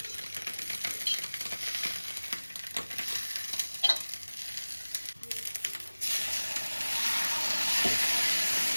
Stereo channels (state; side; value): inverted; both; correlation -1.00